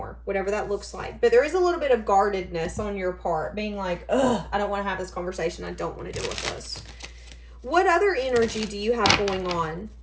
whatever that looks like. But there is a little bit of guardedness on your part, being like, ugh, I don't want to have this conversation. I don't want to deal with this. What other energy do you have going on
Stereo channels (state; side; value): identical; both; correlation 1.00